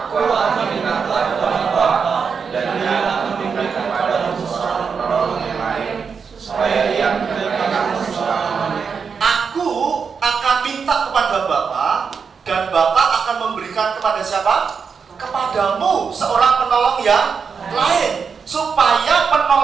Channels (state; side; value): quieter; left; 5.9 dB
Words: akan minta kepada Bapa, dan Dia akan memberikan kepadamu seorang penolong yang lain, supaya Ia memberikan kamu selama-lamanya. Aku akan minta kepada Bapa, dan Bapa akan memberikan kepada siapa? Kepadamu seorang penolong yang lain, supaya